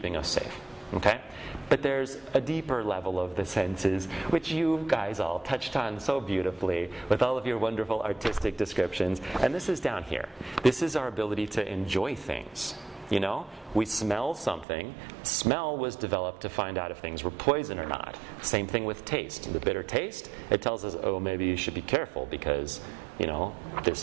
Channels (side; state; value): left; drops out; at 14.7 s